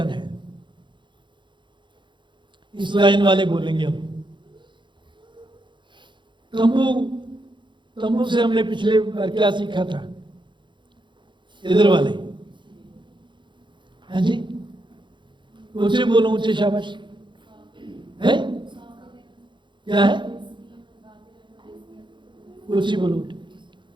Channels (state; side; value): late; left; 0.23 ms